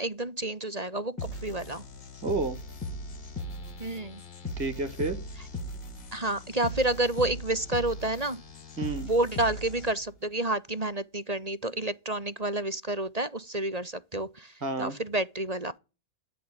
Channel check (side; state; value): left; late; 1.8 ms